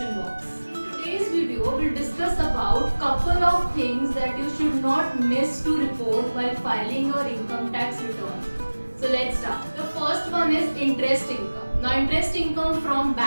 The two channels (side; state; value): both; inverted; correlation -1.00